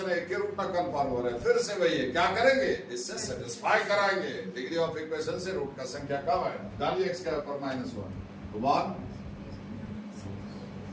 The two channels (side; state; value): both; identical; correlation 1.00